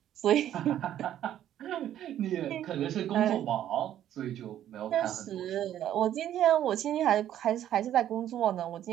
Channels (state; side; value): quieter; left; 11.4 dB